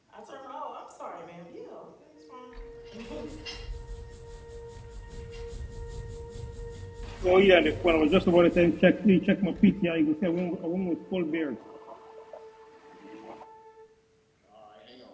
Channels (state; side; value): identical; both; correlation 1.00